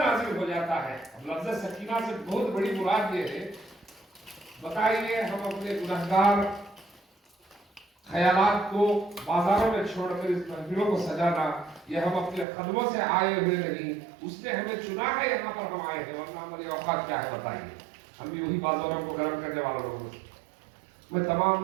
ہو جاتا ہے. اب لفظ سکینہ سے بہت بڑی مراد یہ ہے، بتائیے ہم اپنے گنہگار خیالات کو بازاروں میں چھوڑ کر اس محفلوں کو سجانا، یہ ہم اپنے قدموں سے آئے ہوئے نہیں، اس نے ہمیں چنا ہے، یہاں پر ہم آئے ہیں. ورنہ ہماری اوقات کیا ہے بتائیے؟ ہم بھی وہی بازاروں کو گرم کرنے والے لوگوں سے. میں تمام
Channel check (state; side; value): drops out; left; at 12.5 s